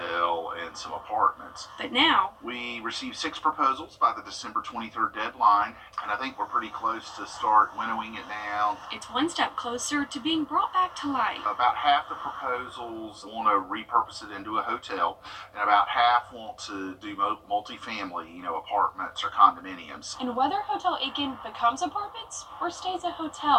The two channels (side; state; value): both; identical; correlation 1.00